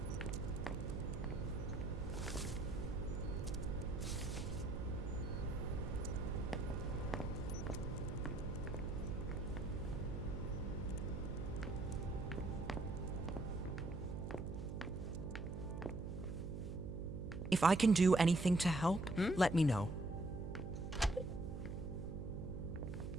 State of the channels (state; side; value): noise; right; hum, 6 dB below the sound